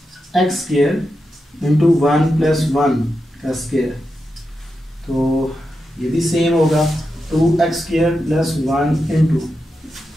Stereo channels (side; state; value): both; normal; correlation 0.88